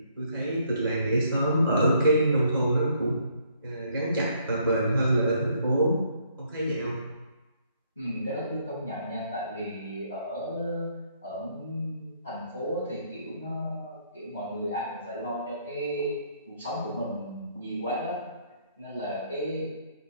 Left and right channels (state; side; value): inverted; both; correlation -0.68